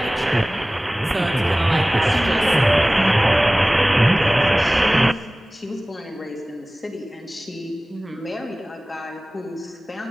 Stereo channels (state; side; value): normal; both; correlation 0.98